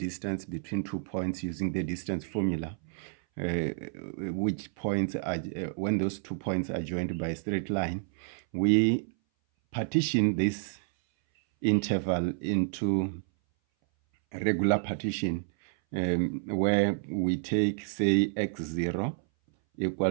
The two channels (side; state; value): left; silent; 58 dB below the other